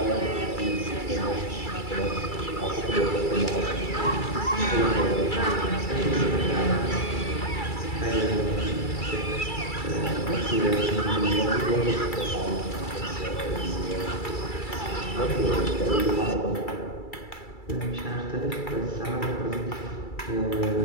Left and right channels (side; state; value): right; late; 2.3 ms